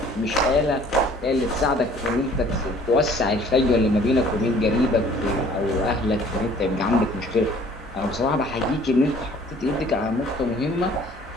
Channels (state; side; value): normal; both; correlation 0.54